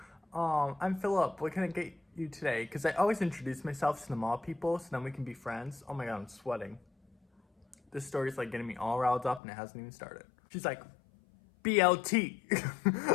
I'm Philip. What can I get you today? Because I always introduce myself to the mall people so then we can be friends. Oh my God, I'm sweating. This story's like getting me all riled up and it hasn't even started. She's like, BLT.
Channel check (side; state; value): right; drops out; at 9.4 s